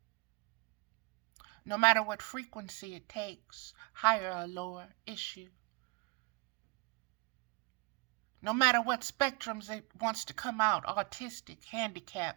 No matter what frequency it takes, higher or lower, it's you. No matter what spectrums it wants to come out, autistic,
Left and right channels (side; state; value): left; quieter; 28.4 dB